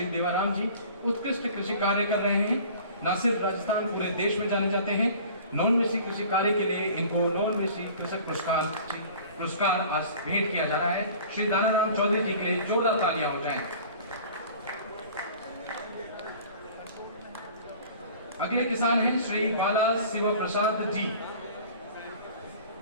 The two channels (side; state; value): both; inverted; correlation -0.45